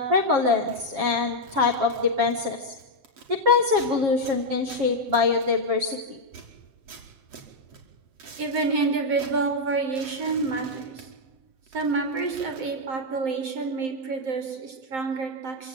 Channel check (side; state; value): left; late; 7.8 ms